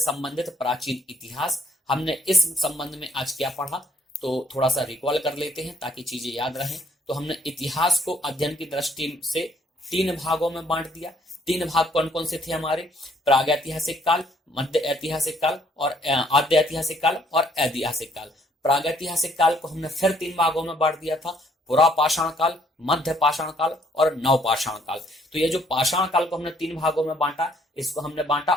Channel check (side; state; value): both; normal; correlation 0.65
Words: प्राचीन इतिहास। हमने इस संबंध में आज क्या पढ़ा, तो थोड़ा सा रिकॉल कर लेते हैं ताकि चीजें याद रहें। तो हमने इतिहास को अध्ययन की दृष्टि से 3 भागों में बांट दिया। 3 भाग कौन कौन से थे हमारे, प्रागैतिहासिक काल, मध्य ऐतिहासिक काल और आद्य ऐतिहासिक काल और ऐतिहासिक काल। प्रागैतिहासिक काल को हमने फिर 3 भागों में बांट दिया था, पुरापाषाण काल, मध्य पाषाण काल और नवपाषाण काल। तो ये जो पाषाण काल को हमने 3 भागों में बांटा, इसको हमने बांटा